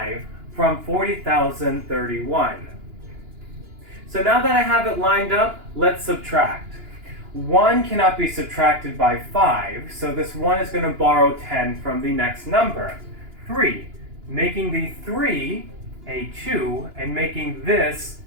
from 40,031. So now that I have it lined up, let's subtract. 1 cannot be subtracted by 5, so this 1 is going to borrow 10 from the next number, 3, making the 3 a 2 and making this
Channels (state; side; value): late; left; 2.9 ms